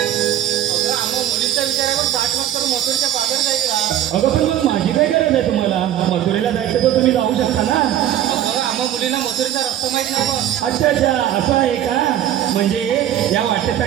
आम्हा मुलींच्या विचारावर 60 वर्ष करून मथुरेच्या बाजार जायचं अगं पण मग माझी काय गरज आहे तुम्हाला? मथुरेला जायचं तर तुम्ही जाऊ शकता ना. अगं आम्हा मुलींना मथुरेचा रस्ता माहित नाही बघ अच्छा अच्छा असं आहे का? म्हणजे या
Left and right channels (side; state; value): left; quieter; 11.5 dB